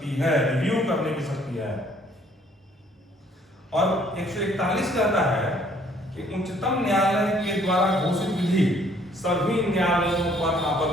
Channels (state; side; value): normal; both; correlation 0.62